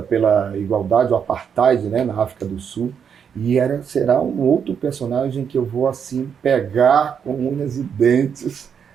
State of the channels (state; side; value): quieter; left; 7.4 dB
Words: pela igualdade, o apartheid, né, na África do Sul. E será um outro personagem que eu vou assim pegar com unhas e dentes,